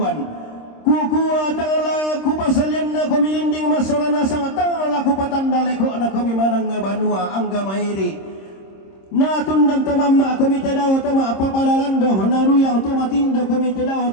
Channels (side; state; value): right; late; 26 ms